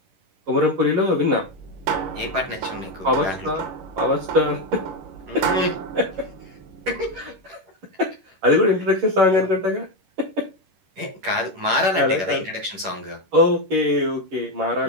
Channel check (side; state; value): left; late; 11 ms